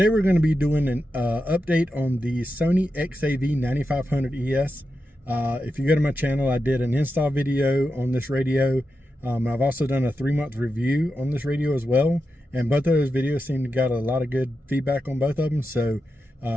we're going to be doing an update on the Sony XAV-9500ES. If you go to my channel, I did an install video on this radio. I've also done a 3-month review on this radio as well, and both of those videos seem to got a lot of good feedback on both of them. So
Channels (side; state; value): both; normal; correlation 0.89